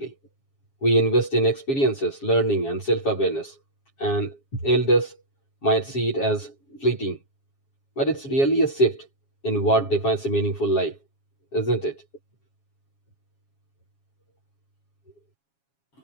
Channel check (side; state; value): right; late; 7.3 ms